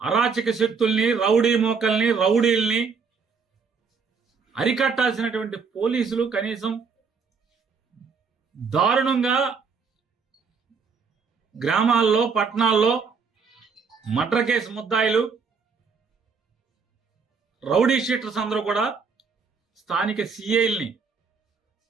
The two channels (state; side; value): quieter; left; 5.4 dB